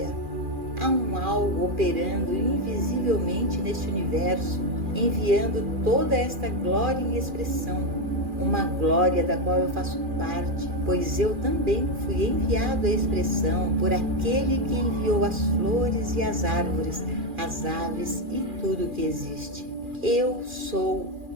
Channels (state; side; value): late; left; 2.4 ms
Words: Há um algo operando invisivelmente neste universo, enviando toda esta glória em expressão, uma glória da qual eu faço parte, pois eu também fui enviado à expressão por aquele que enviou as flores e as árvores, as aves e tudo que existe. Eu sou